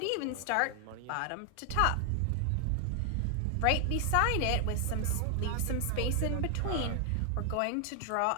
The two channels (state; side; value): different; both; correlation 0.00